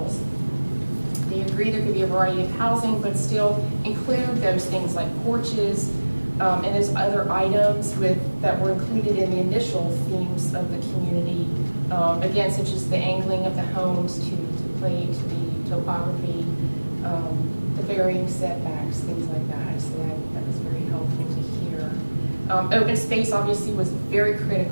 They agree there could be a variety of housing, but still include those things like porches, and those other items that were included in the initial themes of the community. Again, such as the angling of the homes to play to the topography, the varying setbacks, things like that. So that was very helpful to hear. Open space obviously was very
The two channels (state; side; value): inverted; both; correlation -1.00